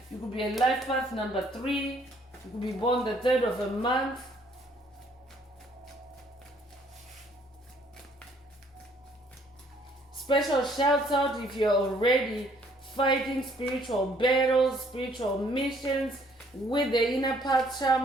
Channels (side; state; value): both; normal; correlation 0.63